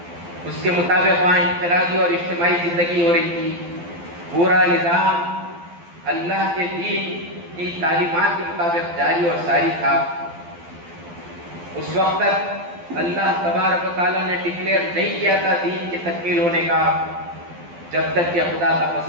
اس کے مطابق وہاں انفرادی اور اجتماعی زندگی ہو رہی تھی۔ پورا نظام اللہ کے دین کی تعلیمات کے مطابق جاری اور ساری تھا۔ اس وقت تک اللہ تبارک و تعالیٰ نے ڈکلیئر نہیں کیا تھا دین کی تکمیل ہونے کا، جب تک کہ خدا کا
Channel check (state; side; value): late; left; 12 ms